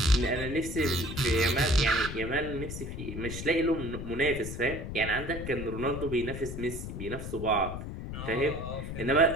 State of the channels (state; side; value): noise; left; rumble, 7 dB below the sound